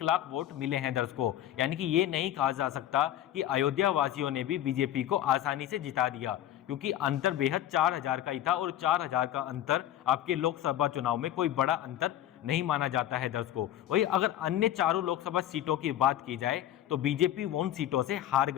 लाख वोट मिले हैं दर्शकों। यानी कि ये नहीं कहा जा सकता कि अयोध्या वासियों ने भी बीजेपी को आसानी से जिता दिया, क्योंकि अंतर बेहद 4,000 का ही था और 4,000 का अंतर आपके लोकसभा चुनाव में कोई बड़ा अंतर नहीं माना जाता है दर्शकों। वही अगर अन्य चारों लोकसभा सीटों की बात की जाए तो बीजेपी उन सीटों से हार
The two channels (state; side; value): quieter; right; 12.1 dB